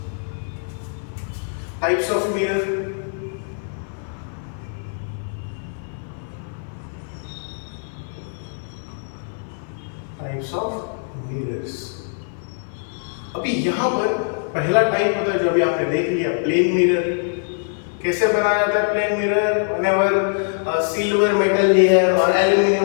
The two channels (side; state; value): right; silent; 55 dB below the other